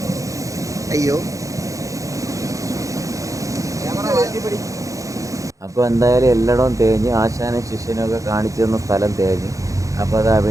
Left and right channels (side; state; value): left; late; 0.16 ms